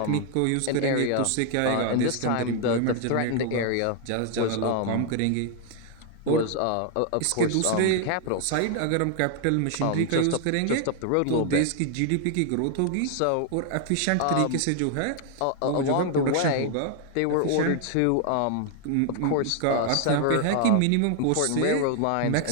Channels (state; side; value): different; both; correlation 0.00